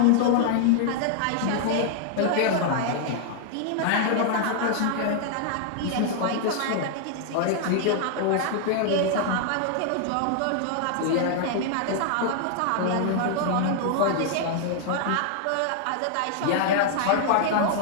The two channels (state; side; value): different; both; correlation 0.00